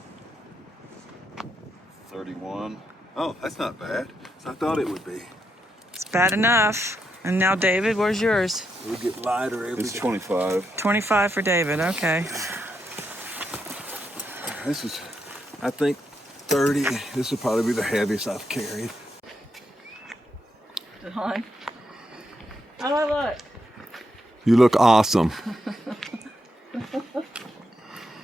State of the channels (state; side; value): normal; both; correlation 0.82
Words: 31. Oh, that's not bad. I thought it would be. It's bad enough. And now, David, where's yours? It'll get lighter every day. It's 25. 25 for David, okay. This is, I think, 30. This will probably be the heaviest I've carried. Hi. How do I look? You look awesome.